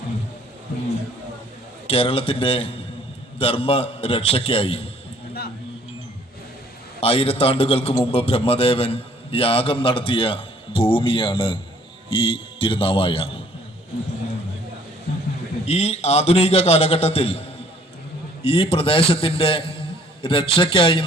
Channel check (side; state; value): both; normal; correlation 0.59